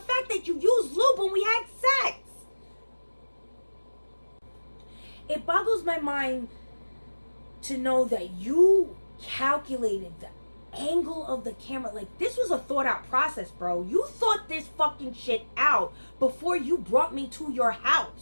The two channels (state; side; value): inverted; both; correlation -1.00